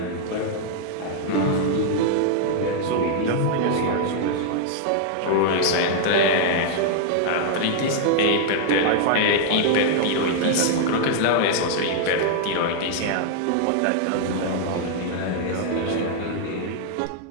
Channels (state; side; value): different; both; correlation -0.01